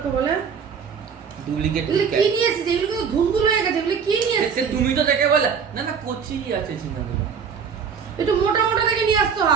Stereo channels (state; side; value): quieter; left; 6.6 dB